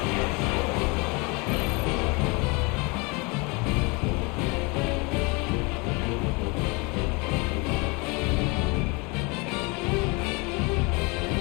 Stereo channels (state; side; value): quieter; right; 28.8 dB